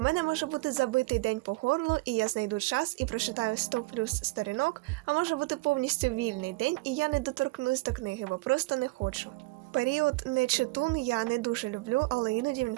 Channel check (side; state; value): left; quieter; 22.4 dB